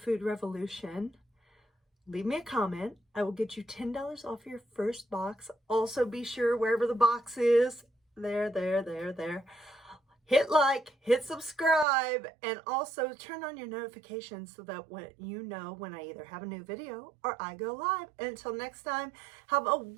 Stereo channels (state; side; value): drops out; left; at 11.9 s